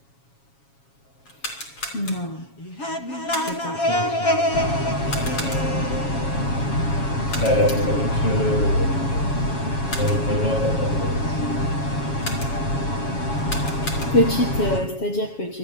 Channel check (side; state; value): right; late; 7.3 ms